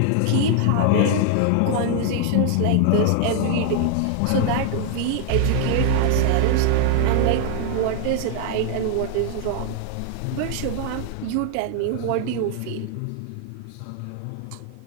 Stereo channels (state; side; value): different; both; correlation 0.00